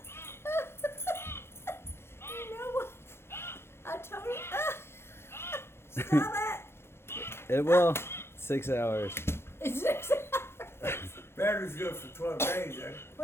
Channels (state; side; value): late; right; 0.12 ms